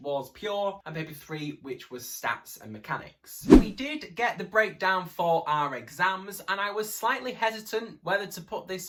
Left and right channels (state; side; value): identical; both; correlation 1.00